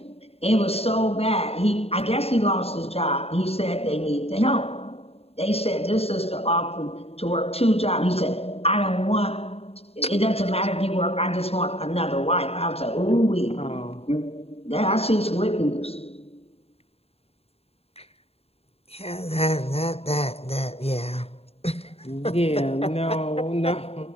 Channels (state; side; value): late; right; 0.29 ms